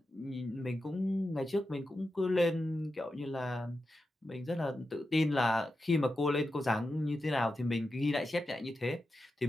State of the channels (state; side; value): normal; both; correlation 0.90